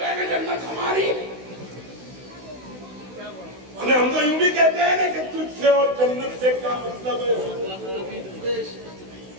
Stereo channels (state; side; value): late; left; 16 ms